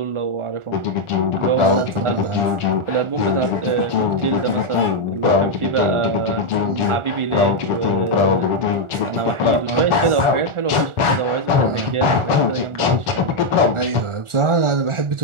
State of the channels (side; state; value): left; late; 1.4 ms